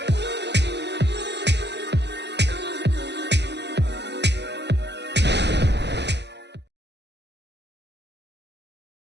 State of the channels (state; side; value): late; left; 0.50 ms